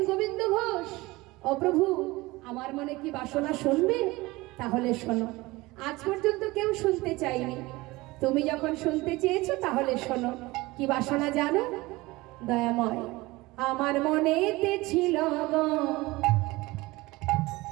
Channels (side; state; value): left; quieter; 21.0 dB